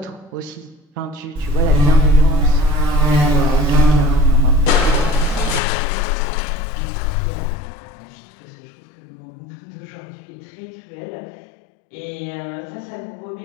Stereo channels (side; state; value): right; drops out; at 5.6 s